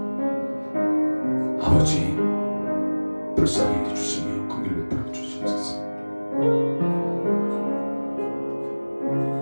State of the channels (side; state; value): both; inverted; correlation -1.00